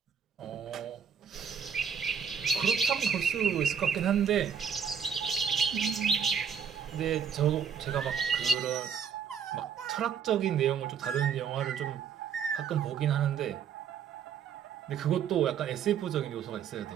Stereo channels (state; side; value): quieter; left; 7.3 dB